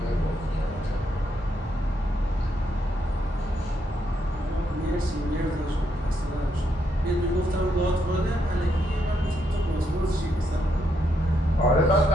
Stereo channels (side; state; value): both; normal; correlation 0.78